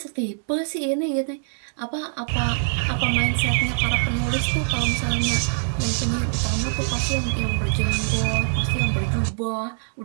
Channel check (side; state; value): left; silent; digital silence